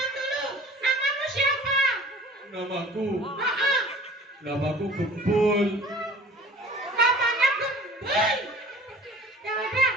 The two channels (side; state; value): both; normal; correlation 0.46